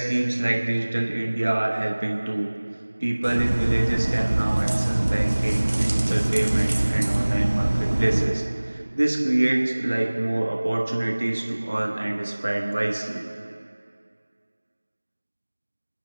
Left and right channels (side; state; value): both; inverted; correlation -1.00